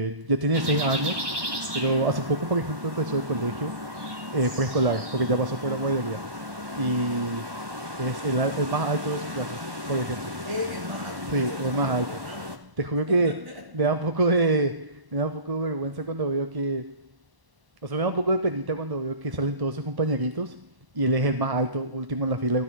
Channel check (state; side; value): late; left; 1.2 ms